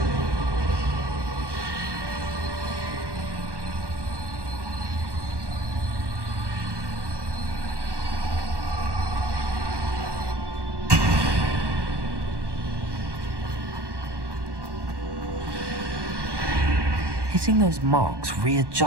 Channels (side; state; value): left; late; 1.1 ms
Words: Getting those marks